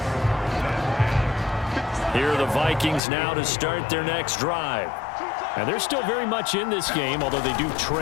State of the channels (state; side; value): drops out; right; at 3.0 s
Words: Here are the Vikings now to start their next drive. And they're still very much in this game, although they do